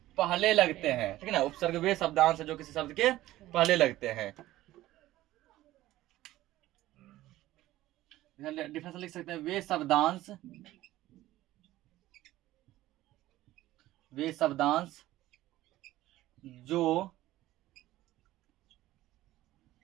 पहले लगते हैं, ठीक है ना। उपसर्ग वे शब्दांश हैं जो किसी शब्द के पहले लगते हैं। डिफरेंस लिख सकते हैं, वे शब्दांश जो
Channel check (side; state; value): left; quieter; 15.7 dB